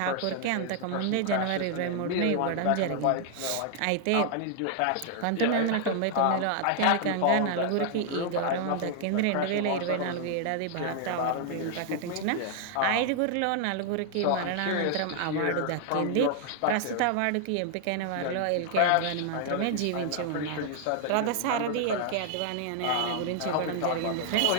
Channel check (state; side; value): different; both; correlation -0.01